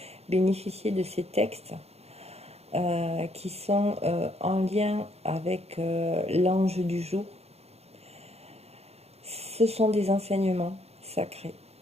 bénéficier de ces textes qui sont en lien avec l'ange du jour. Ce sont des enseignements sacrés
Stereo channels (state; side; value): late; left; 0.30 ms